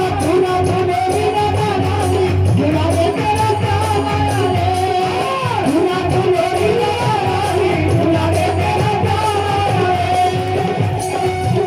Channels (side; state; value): both; identical; correlation 1.00